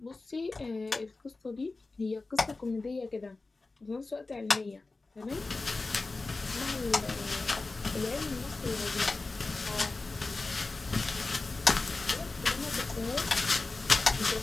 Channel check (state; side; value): quieter; right; 3.5 dB